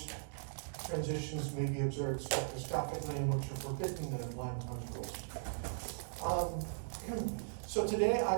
transitions may be observed spectroscopically and which are forbidden and applying Planck's rules. So today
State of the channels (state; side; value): silent; left; digital silence